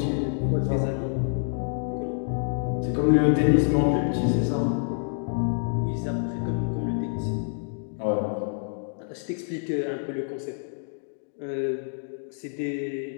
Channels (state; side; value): silent; right; digital silence